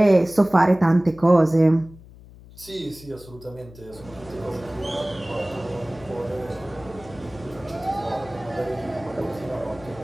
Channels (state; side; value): noise; left; hum, 20 dB below the sound